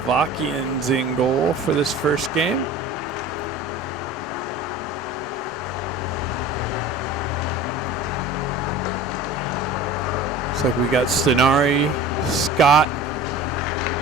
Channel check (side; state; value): both; normal; correlation 0.40